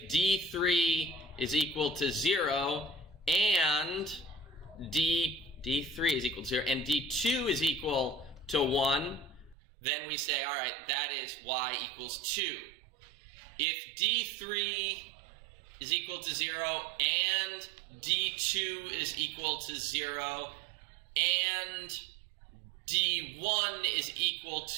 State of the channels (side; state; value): left; drops out; at 9.6 s